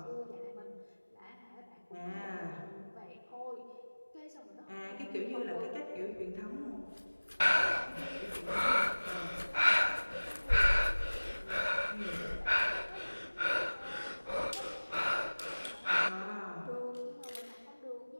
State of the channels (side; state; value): both; inverted; correlation -1.00